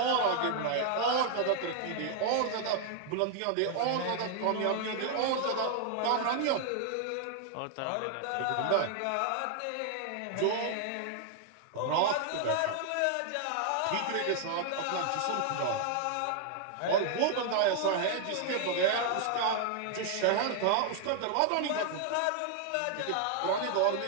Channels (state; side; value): different; both; correlation 0.00